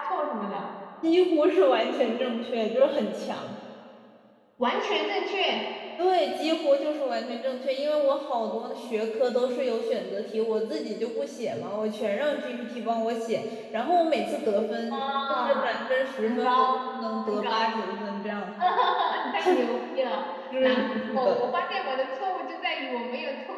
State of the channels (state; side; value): identical; both; correlation 1.00